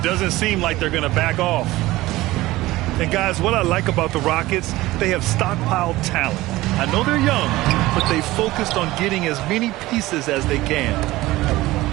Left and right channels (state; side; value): quieter; left; 18.1 dB